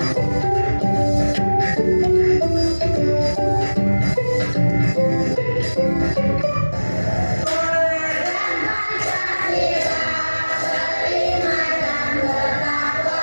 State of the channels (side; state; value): both; inverted; correlation -1.00